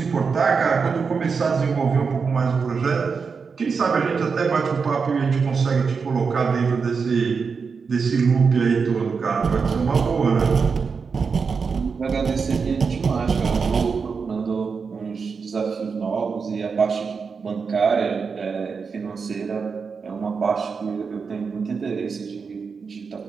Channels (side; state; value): left; quieter; 5.4 dB